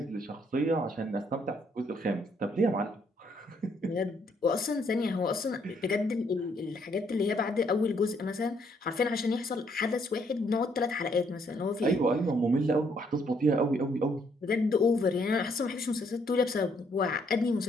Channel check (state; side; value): normal; both; correlation 0.69